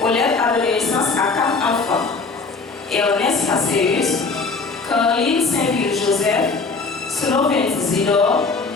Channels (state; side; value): quieter; right; 4.2 dB